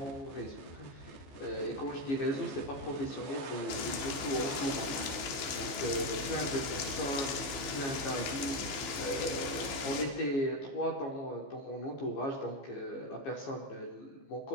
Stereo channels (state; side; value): late; right; 15 ms